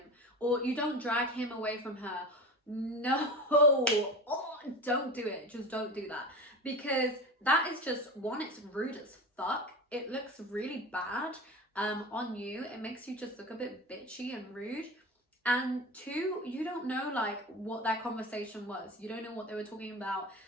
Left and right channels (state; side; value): normal; both; correlation 0.29